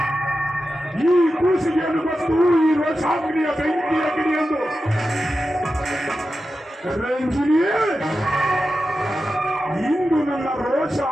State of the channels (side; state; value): both; normal; correlation 0.91